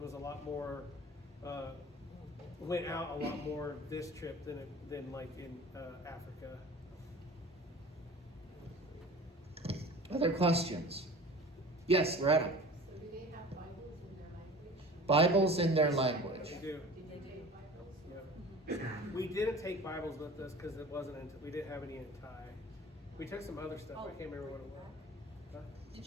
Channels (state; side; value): normal; both; correlation 0.41